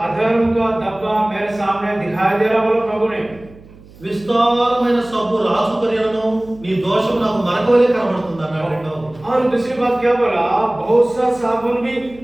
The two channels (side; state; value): right; noise; hum, 23 dB below the sound